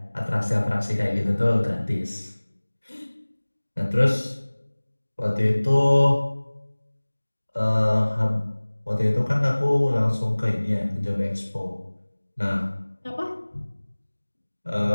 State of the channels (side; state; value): both; inverted; correlation -1.00